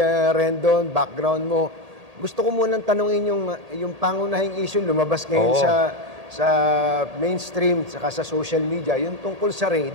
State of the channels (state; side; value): late; left; 1.8 ms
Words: Rendon, background mo. Gusto ko munang tanungin yung pangunahing issue lumabas ngayon sa mainstream, saka sa social media, yung tungkol sa raid